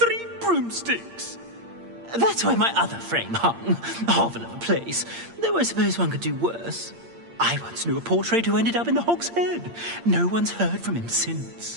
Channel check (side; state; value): left; late; 8.7 ms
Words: Broomsticks. That's why my other frame hung. Hovel of a place. Though I suppose one could do worse. I once knew a portrait who ended up in the Hog's Head. No one's heard from him